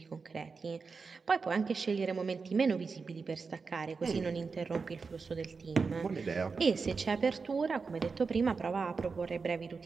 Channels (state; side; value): quieter; left; 4.8 dB